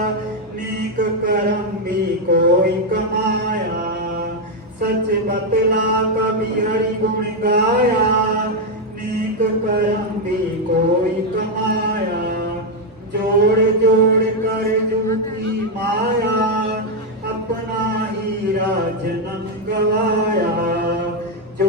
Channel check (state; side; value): normal; both; correlation 0.03